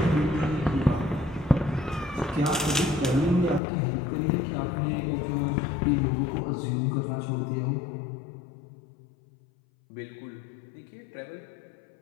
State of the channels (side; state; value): right; drops out; at 3.6 s